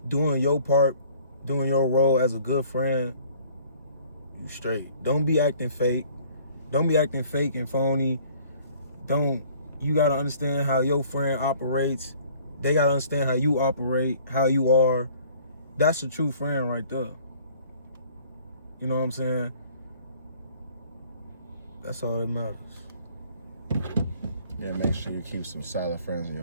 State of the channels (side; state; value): both; inverted; correlation -0.55